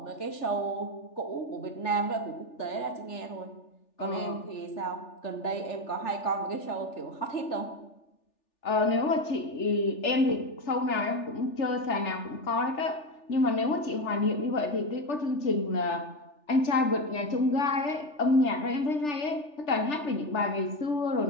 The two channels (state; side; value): late; right; 3.4 ms